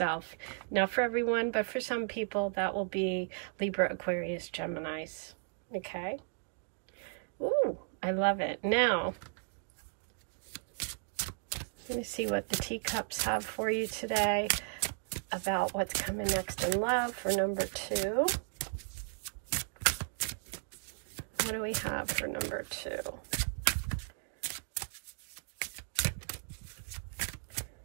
Not for everyone, but for some people, that will be Libra, Aquarius, Geminis. Okay? Ooh, I love it. Now, let me see what the teacups have for you today about what's coming next in love for number 2. What do we have for number 2?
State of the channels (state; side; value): silent; left; digital silence